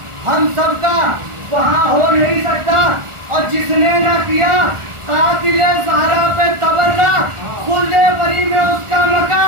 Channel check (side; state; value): left; late; 1.4 ms